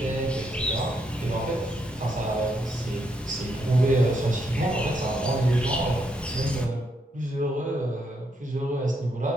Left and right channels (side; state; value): both; normal; correlation 0.77